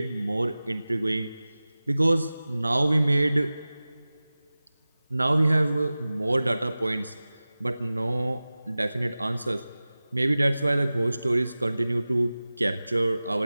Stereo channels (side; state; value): both; inverted; correlation -0.97